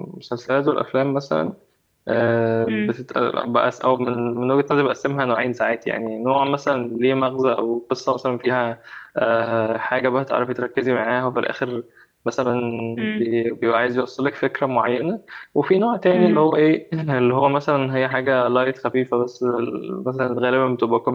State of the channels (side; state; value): both; identical; correlation 1.00